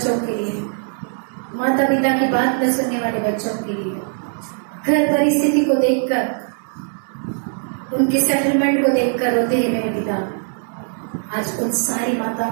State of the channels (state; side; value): silent; left; 65 dB below the other